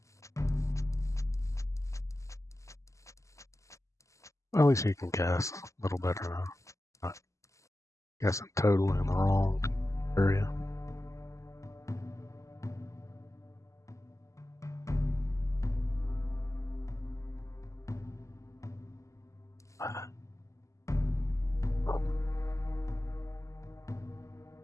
well, at least you can guess a little better now. Not guessing totally in the wrong area.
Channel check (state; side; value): late; right; 0.15 ms